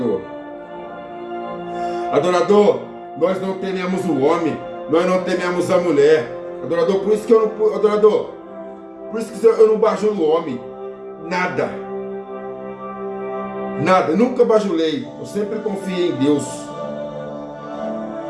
Adorador, nós não tememos o homem, nós não tememos a mulher. Adorador, por isso que eu não, adorador, por isso que eu não bajulo o homem. Nada. Nada, nunca bajulei. Eu sempre confiei em Deus.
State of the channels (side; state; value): both; identical; correlation 1.00